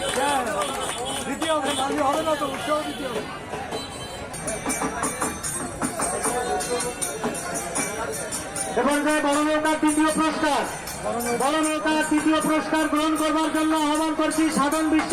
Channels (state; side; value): identical; both; correlation 1.00